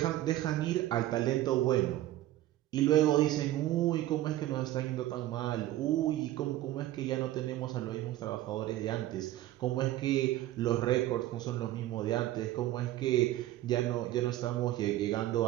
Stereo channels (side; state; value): left; quieter; 14.7 dB